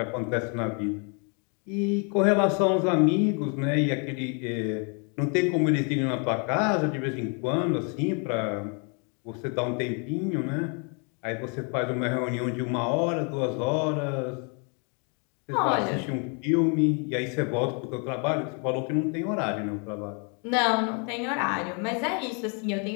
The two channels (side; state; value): right; quieter; 37.1 dB